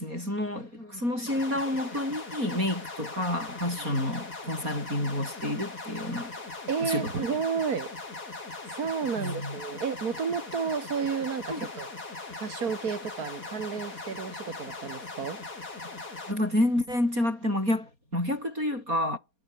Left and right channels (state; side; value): late; left; 4.2 ms